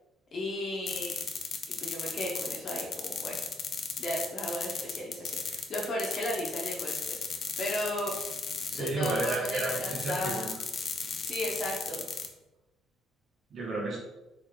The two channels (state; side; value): normal; both; correlation 0.72